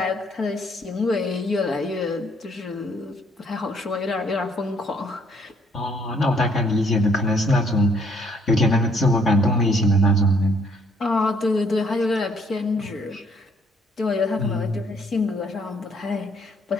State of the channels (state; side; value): normal; both; correlation 0.66